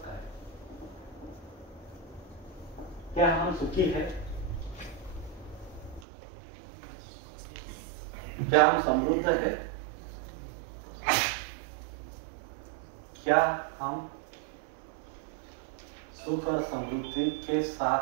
काय? क्या हम सुखी है? क्या हम समृद्ध है? क्या हम सुख और समृद्धि के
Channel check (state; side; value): drops out; left; at 6.1 s